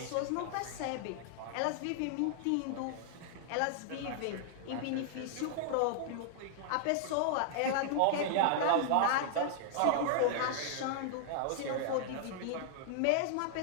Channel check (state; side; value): different; both; correlation -0.01